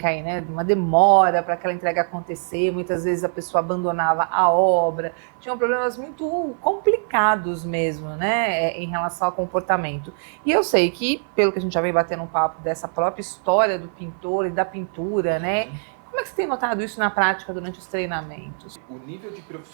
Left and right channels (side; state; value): left; silent; 64 dB below the other